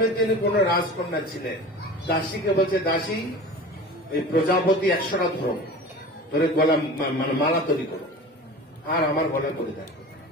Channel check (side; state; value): both; normal; correlation 0.36